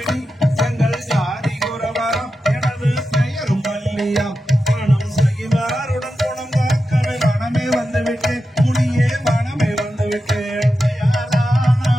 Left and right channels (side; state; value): both; normal; correlation 0.91